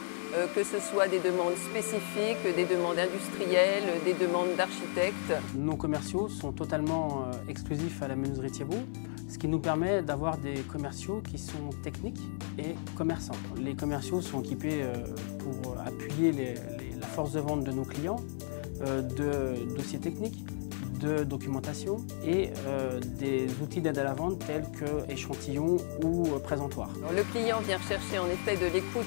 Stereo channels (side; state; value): right; silent; 56 dB below the other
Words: que ce soit des demandes spécifiques, des demandes industrielles, des demandes d'architectes. Nos commerciaux sont totalement exclusifs à la menuiserie Thiebaud, ce qui nous permet d'avoir des commerciaux qui sont techniques et commerçants. Les commerciaux sont équipés pour appuyer la force de vente de nos clients, de dossiers techniques, de documentation et des outils d'aide à la vente tels que échantillons ou présentoirs. Alors, le client vient chercher en effet de l'écoute